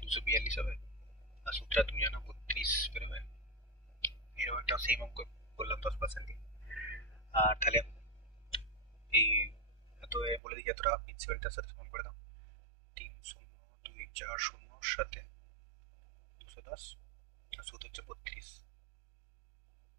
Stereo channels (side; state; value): left; drops out; at 10.4 s